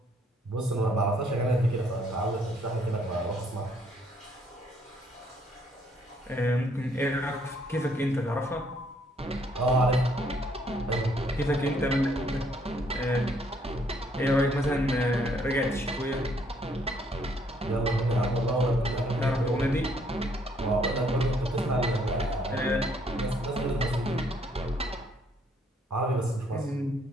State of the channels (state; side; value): normal; both; correlation 0.67